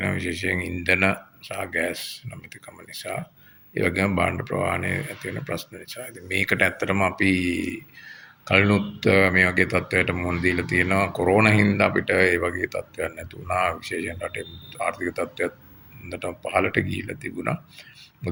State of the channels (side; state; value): both; identical; correlation 1.00